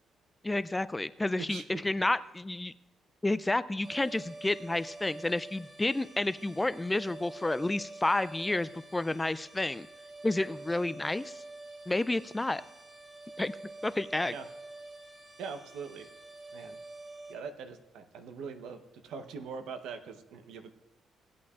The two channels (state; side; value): normal; both; correlation 0.97